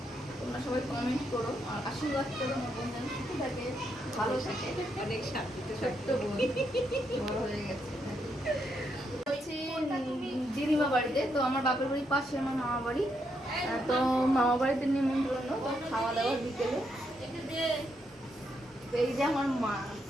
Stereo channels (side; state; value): both; normal; correlation 0.79